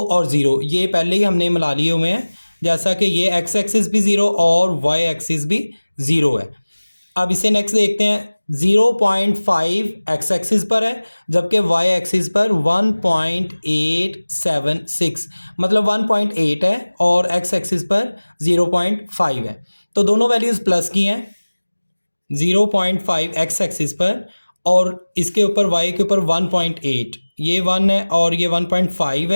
और 0 ये पहले ही हमने मिला लिए हुए हैं, जैसा कि ये x एक्सिस भी 0 और y एक्सिस भी 0 है। अब इसे नेक्स्ट देखते हैं, 0.5 x एक्सिस पर है जबकि y एक्सिस पर 1.876, मतलब 1.8 है और x एक्सिस पर 0.5 है, तो दोनों वैल्यूज़ प्लस की हैं। 0.5 x एक्सिस पर और इसके ऊपर y के ऊपर 1.8, ये 1 है और ये 1.5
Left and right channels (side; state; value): both; inverted; correlation -1.00